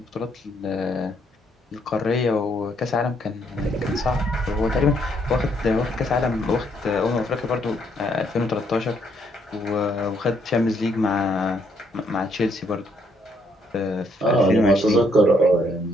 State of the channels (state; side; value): normal; both; correlation 0.71